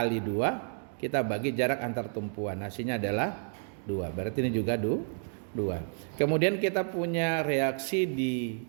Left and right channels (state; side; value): silent; left; 57 dB below the other